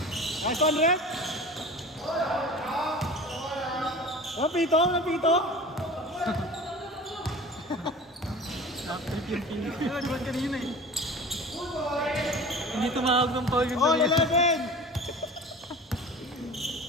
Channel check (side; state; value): both; normal; correlation 0.38